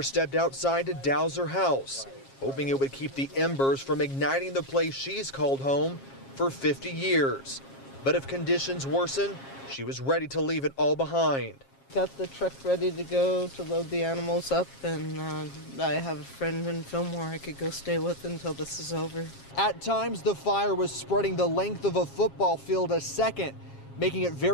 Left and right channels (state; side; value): late; right; 7.4 ms